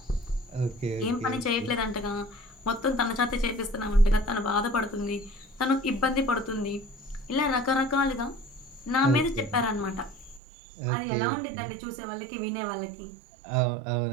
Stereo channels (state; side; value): drops out; left; at 10.4 s